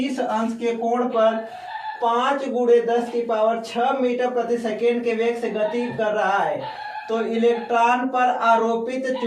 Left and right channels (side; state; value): both; identical; correlation 1.00